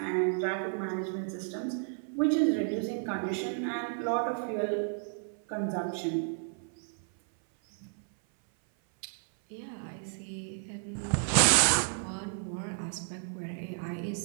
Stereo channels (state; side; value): silent; left; 56 dB below the other